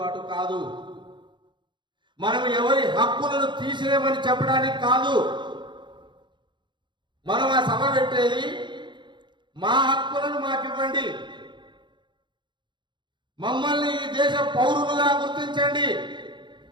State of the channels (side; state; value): left; late; 0.23 ms